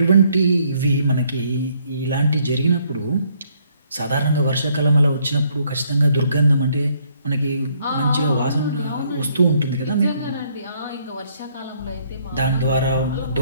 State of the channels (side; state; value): both; inverted; correlation -0.68